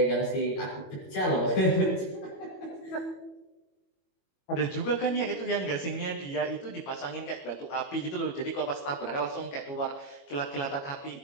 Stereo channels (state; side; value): late; right; 22 ms